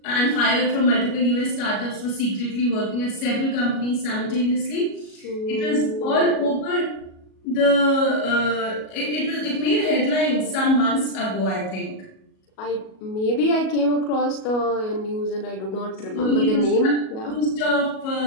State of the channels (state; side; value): late; right; 37 ms